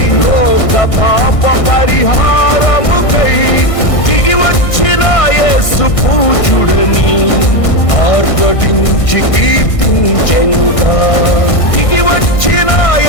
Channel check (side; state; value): right; late; 1.6 ms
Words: లోక పాప పరిహారముకై దిగి వచ్చిన యేసు పూజుడని ఆర్భటించి కీర్తించెనుగా. దిగి వచ్చిన